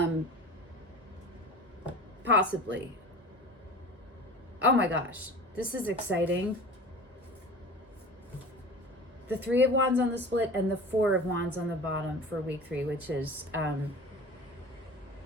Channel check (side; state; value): both; normal; correlation 0.37